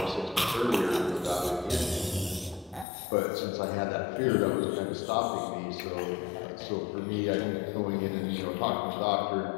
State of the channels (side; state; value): right; drops out; at 2.9 s